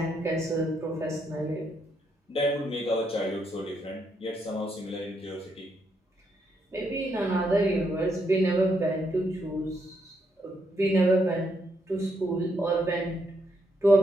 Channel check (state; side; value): normal; both; correlation 0.77